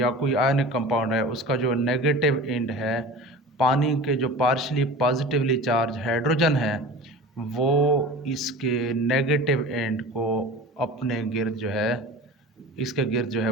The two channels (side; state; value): both; normal; correlation 0.36